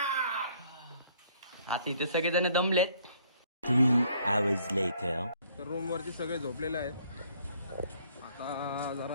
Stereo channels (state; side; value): inverted; both; correlation -0.63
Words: आता इथे सगळेजण दमलेत. 3 hours later. तर रूम वरती सगळे झोपलेले आहेत. आता